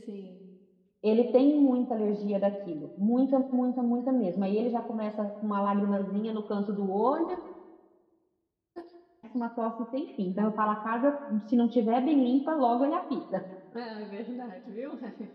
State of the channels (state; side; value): identical; both; correlation 1.00